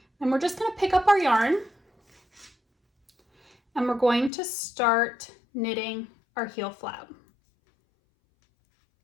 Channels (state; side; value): drops out; right; at 4.3 s